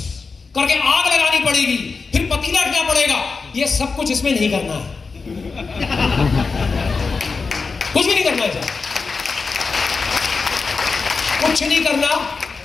करके आग लगानी पड़ेगी, फिर पतीला रखना पड़ेगा। ये सब कुछ इसमें नहीं करना है, कुछ भी नहीं करना है, कुछ नहीं करना।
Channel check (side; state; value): right; quieter; 4.5 dB